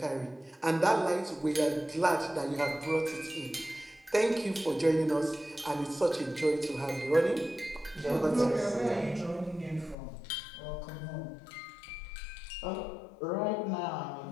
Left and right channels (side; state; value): right; drops out; at 10.0 s